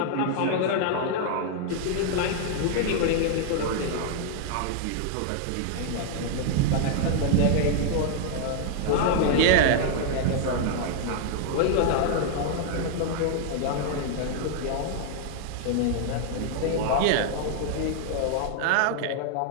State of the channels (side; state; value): both; different; correlation 0.00